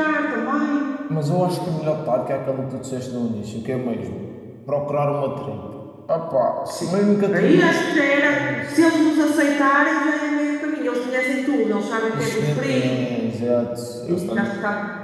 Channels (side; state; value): both; identical; correlation 1.00